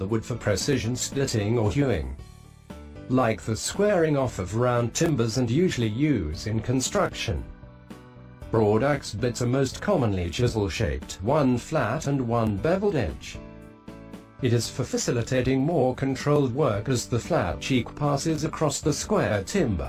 wood for precision splitting or hewing. Like the squaring off of round timbers and usually used in construction. Broad axe bits are most commonly chisel-shaped, one flat and one beveled edge. It is for facilitating more controlled work as the flat cheek passes across the square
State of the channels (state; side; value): identical; both; correlation 1.00